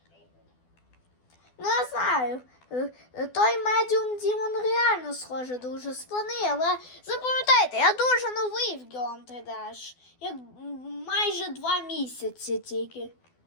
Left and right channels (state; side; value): late; right; 12 ms